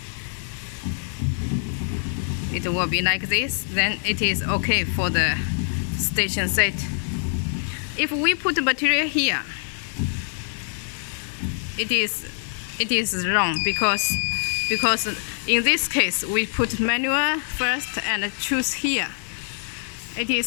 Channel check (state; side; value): silent; right; 62 dB below the other